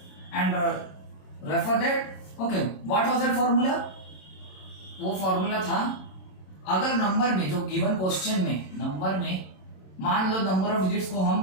refer that. Okay, what was that formula? वो formula था, अगर number में जो given question में number में मान लो number of digits को हम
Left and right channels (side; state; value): right; late; 27 ms